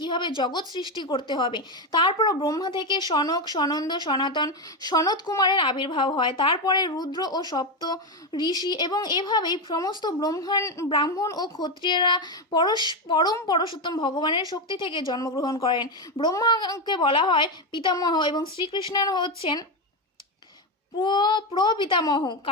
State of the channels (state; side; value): normal; both; correlation 0.11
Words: জগৎ সৃষ্টি করতে হবে। তারপর ব্রহ্মা থেকে সনক, সনন্দ, সনাতন, সনত কুমারের আবির্ভাব হয়। তারপরে রুদ্র ও সপ্ত ঋষি এবং এভাবেই সমস্ত ব্রাহ্মণ ও ক্ষত্রিয়রা পরম পরশোত্তম ভগবানের শক্তি থেকে জন্মগ্রহণ করেন। ব্রহ্মাকে বলা হয় পিতামহ এবং শ্রীকৃষ্ণ হচ্ছেন প্রপিতামহ,